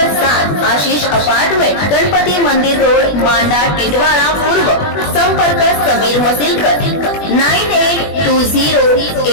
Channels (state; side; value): late; right; 21 ms